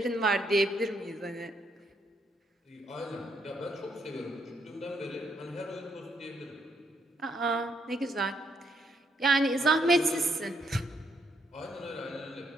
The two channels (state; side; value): normal; both; correlation 0.75